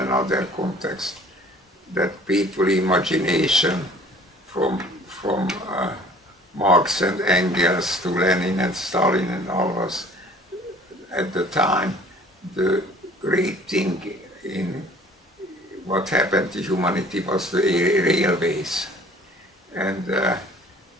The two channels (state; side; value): normal; both; correlation 0.51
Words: context, that people's imagination from Marx and Engels to Lenin and Stalin and all of us at the time, the great thing in what happened to humanity was the railways. And